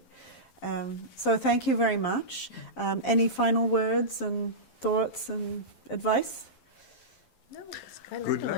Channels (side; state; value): right; late; 11 ms